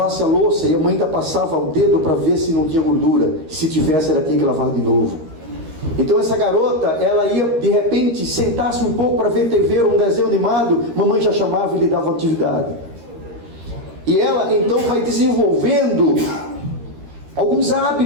a louça, e a mãe ainda passava o dedo para ver se não tinha gordura. Se tivesse, ela tinha que lavar de novo. Então essa garota, ela ia de repente sentar-se um pouco para ver TV ou um desenho animado, mamãe já chamava e lhe dava atividade. E ela então vai desenvolvendo alguns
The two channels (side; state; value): left; late; 13 ms